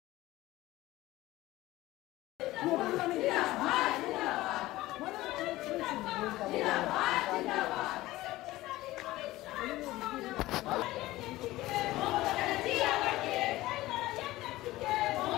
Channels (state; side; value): quieter; right; 17.4 dB